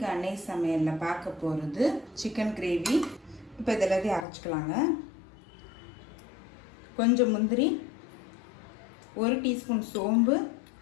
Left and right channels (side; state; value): right; drops out; at 4.2 s